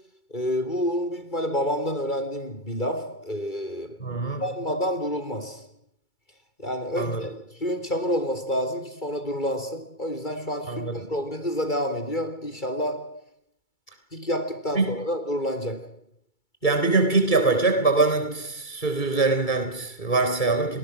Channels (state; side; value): late; right; 2.3 ms